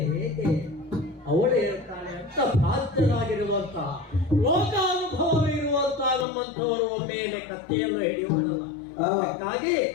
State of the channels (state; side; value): drops out; right; at 6.2 s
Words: ಹೇಗೆ ಅವಳು ಹೇಳ್ತಾಳೆ ಅಂತ ಪ್ರಾಜ್ಞರಾಗಿರುವಂತಹ ಲೋಕಾನುಭವವಿರುವಂತಹ ನಮ್ಮಂಥವರು ಒಮ್ಮೆಲೆ ಕತ್ತೆಯನ್ನು ಹಿಡಿಯುವುದಲ್ಲ. ಅದಕ್ಕಾಗಿ